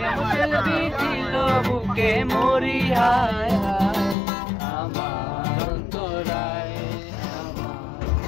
বুকে মরি হায় হায়, আমার অন্তরায় আমার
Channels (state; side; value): drops out; right; at 4.2 s